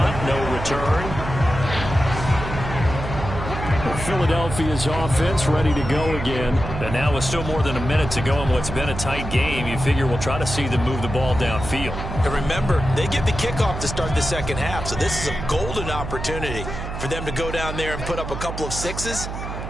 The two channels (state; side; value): noise; right; hum, 7 dB below the sound